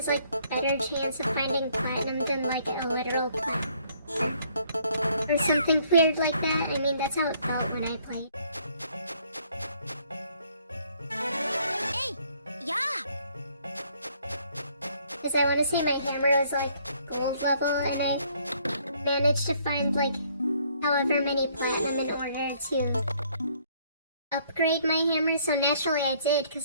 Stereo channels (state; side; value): inverted; both; correlation -0.64